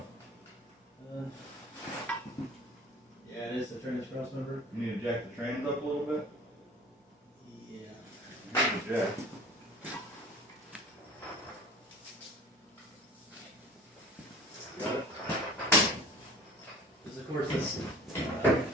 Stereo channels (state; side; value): normal; both; correlation 0.43